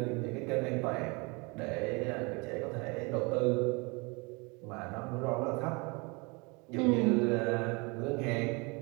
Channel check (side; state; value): left; quieter; 28.6 dB